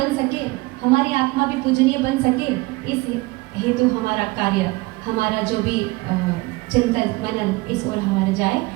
सके, हमारी आत्मा भी पूजनीय बन सके। इस हेतु हमारा कार्य, हमारा जो भी चिंतन मनन इस ओर हमारा जाए,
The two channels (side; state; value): left; quieter; 22.6 dB